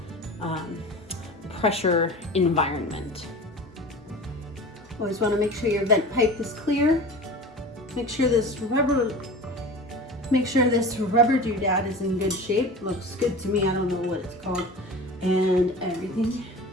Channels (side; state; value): both; normal; correlation 0.35